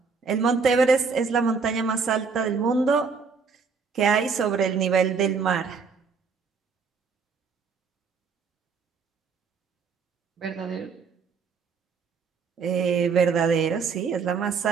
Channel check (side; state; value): left; quieter; 5.3 dB